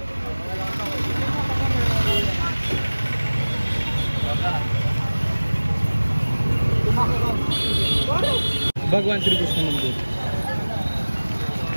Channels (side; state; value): both; inverted; correlation -1.00